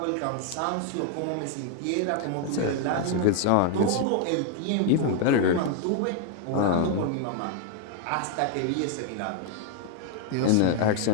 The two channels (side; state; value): both; different; correlation 0.00